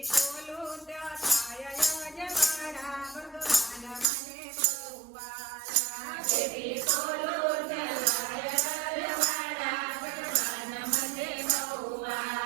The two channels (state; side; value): drops out; left; at 4.0 s